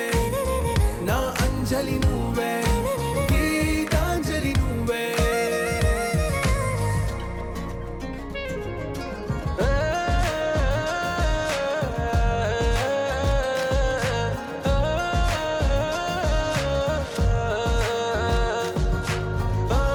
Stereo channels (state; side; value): identical; both; correlation 1.00